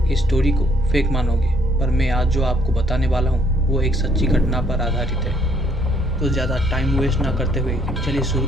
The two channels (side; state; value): both; normal; correlation 0.66